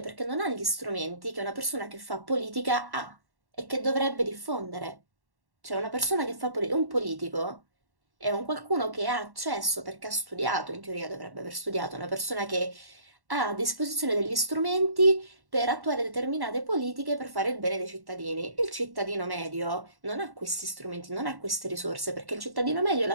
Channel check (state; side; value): late; left; 1.1 ms